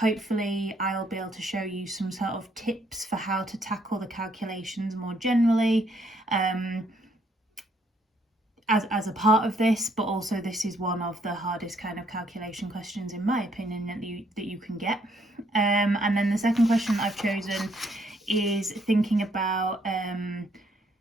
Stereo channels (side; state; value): both; normal; correlation 0.69